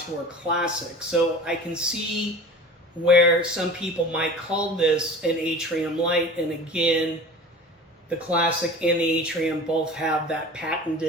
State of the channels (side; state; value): both; normal; correlation 0.38